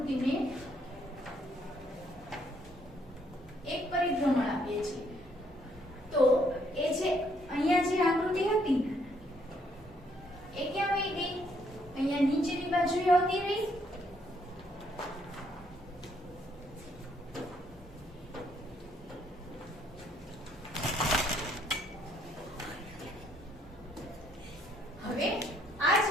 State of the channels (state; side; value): normal; both; correlation 0.69